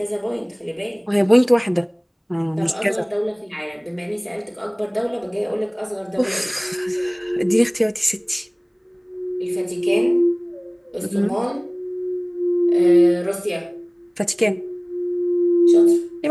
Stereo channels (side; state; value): both; identical; correlation 1.00